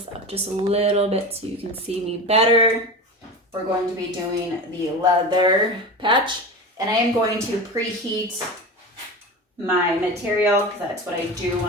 up just a little bit so you can see me better. We're going to be doing the leather patch. And I am going to preheat my material because that's what I do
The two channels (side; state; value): both; normal; correlation 0.28